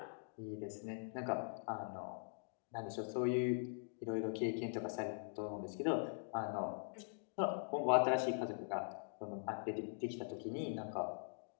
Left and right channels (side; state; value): right; silent; digital silence